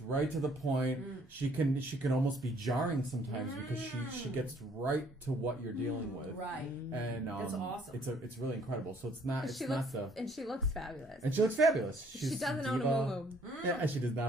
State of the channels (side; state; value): both; normal; correlation 0.62